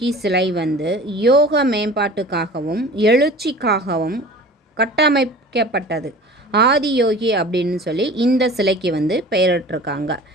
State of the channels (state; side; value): normal; both; correlation 0.41